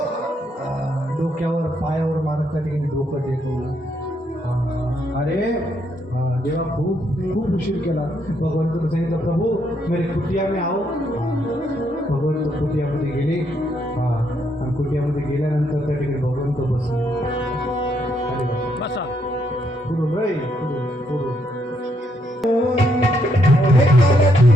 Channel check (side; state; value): both; normal; correlation 0.75